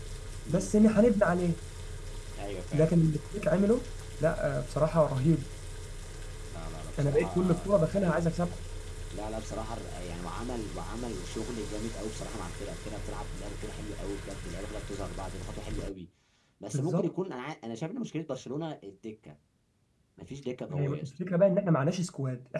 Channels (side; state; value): both; identical; correlation 1.00